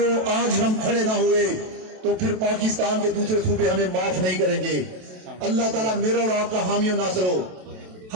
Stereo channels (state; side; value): late; left; 27 ms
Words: آج ہم کھڑے نہ ہوئے تو پھر پاکستان کے دوسرے صوبے ہمیں معاف نہیں کریں گے. اللہ تعالیٰ میرا اور آپ کا حامی و ناصر ہو.